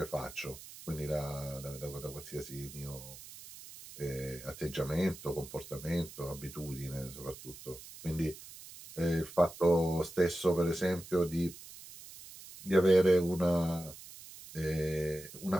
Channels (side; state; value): right; noise; hiss, 16 dB below the sound